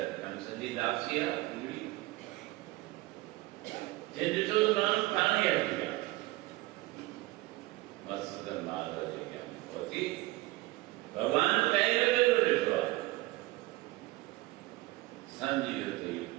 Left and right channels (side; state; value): left; quieter; 19.5 dB